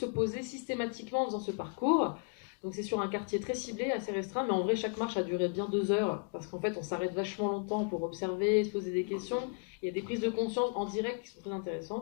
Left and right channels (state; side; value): quieter; right; 38.0 dB